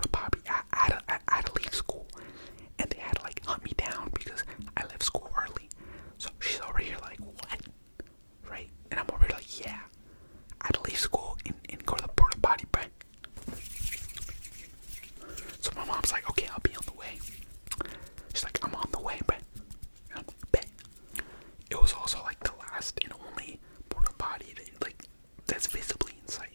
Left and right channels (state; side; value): inverted; both; correlation -1.00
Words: potty. I had to leave school. And they had to like hunt me down because I left school early. So she's over here like, what? Right? And I'm over here like, yeah, I had to leave school and go to the porta potty, bro. So my mom's like, okay, I'll be on the way. She's like, I'm on the way, bro. And I'm like, bet. It was also like the last and only porta potty that's visibly in sight,